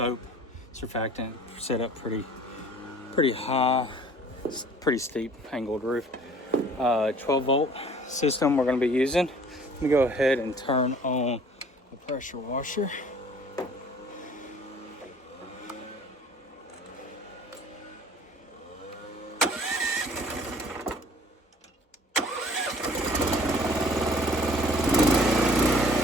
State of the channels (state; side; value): normal; both; correlation 0.51